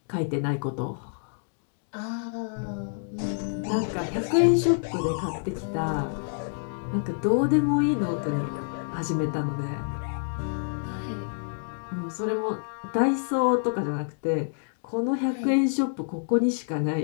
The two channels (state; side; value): silent; right; digital silence